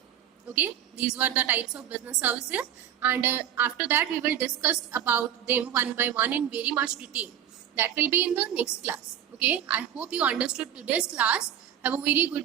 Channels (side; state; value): left; quieter; 10.1 dB